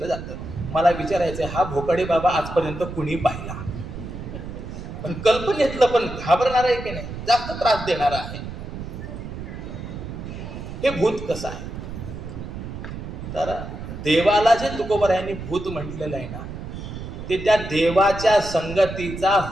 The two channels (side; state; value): right; noise; rumble, 9 dB below the sound